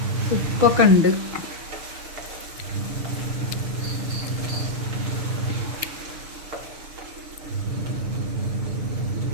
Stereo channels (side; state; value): left; late; 6.6 ms